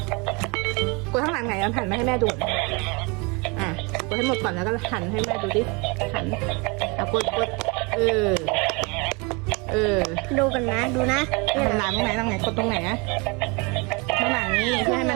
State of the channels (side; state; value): left; quieter; 29.4 dB